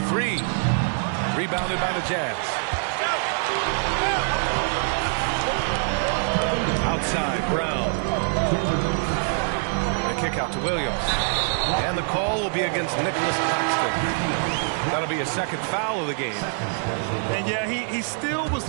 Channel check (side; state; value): left; silent; 62 dB below the other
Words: 3. Rebounded by the Jazz. Outside, Brown. The kick out to Williams. And the call will be against Nicholas Claxton. That'll be a second foul of the game. And yeah, he still was